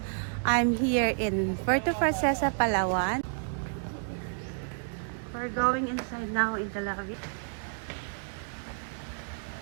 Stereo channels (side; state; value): left; silent; digital silence